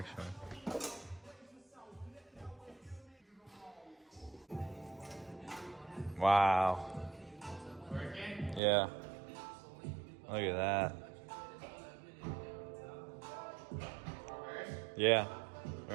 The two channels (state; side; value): drops out; left; at 8.6 s